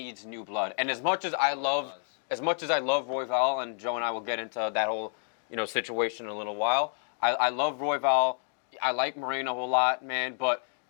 new blood, and as much as I love Royval, and Joe and I will get into that whole situation in a little while. I love Royval. I like Moreno a lot, man. But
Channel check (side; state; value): right; silent; 58 dB below the other